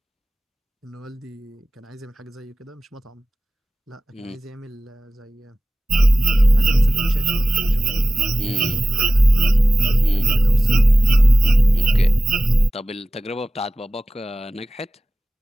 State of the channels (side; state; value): both; normal; correlation 0.93